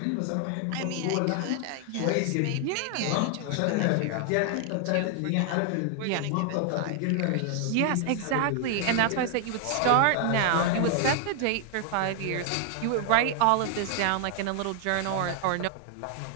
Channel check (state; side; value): different; both; correlation 0.00